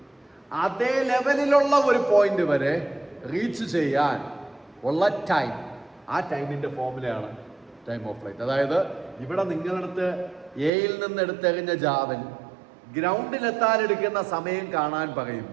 അതേ ലെവലിലുള്ള ഒരു പോയിന്റ് വരെ റീച്ച് ചെയ്യാൻ ഉള്ള ടൈം, ആ ടൈമിന്റെ ഫോർമുലയാണ് ടൈം ഓഫ് ഫ്ലൈറ്റ്. അതായത് ഇവിടെ നിങ്ങളടുത്ത് എയിൽ നിന്ന് എടുത്തെറിഞ്ഞ ജാവൽ ഗ്രൗണ്ടിലെത്താൻ എടുക്കുന്ന സമയം കാണാൻ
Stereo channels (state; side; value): drops out; left; at 10.7 s